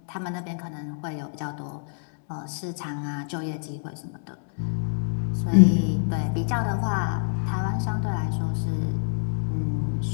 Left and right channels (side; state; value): right; silent; 60 dB below the other